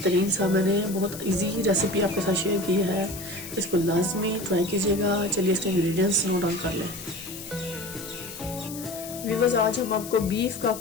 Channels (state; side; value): noise; left; hiss, 12 dB below the sound